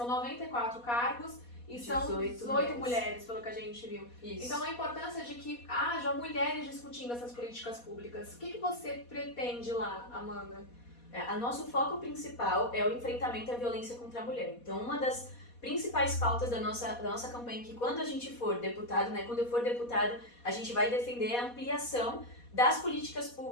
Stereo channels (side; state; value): right; late; 4.2 ms